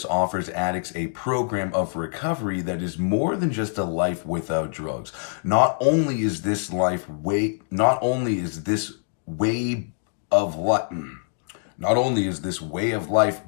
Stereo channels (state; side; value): silent; right; digital silence